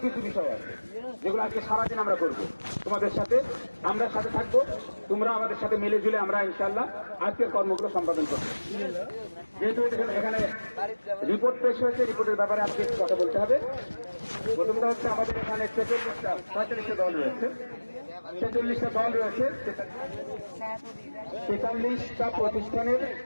কিছু বিষয় আছে যেগুলো আজকে সারাদিন আমরা করব। তোমাদের সাথে আমরা সাথে থাকবো, তোমরা আমাদের সাথে মিলে ঝুলে আমরা ইনশাল্লাহ আজকের কর্মগুলো সম্পাদন করবো। যেহেতু এখানে রিপোর্ট পেশ হয়েছে, রিপোর্টের ব্যাপারে আজকে কথা বলতে হবে। প্রথমটা হচ্ছে আমাদের এখানে 46টা দল রয়েছে, 46টা দল রয়েছে, 43টা প্রতিষ্ঠানের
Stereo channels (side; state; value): both; inverted; correlation -1.00